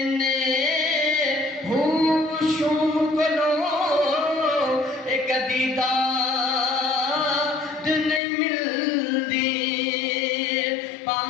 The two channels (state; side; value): drops out; right; at 8.2 s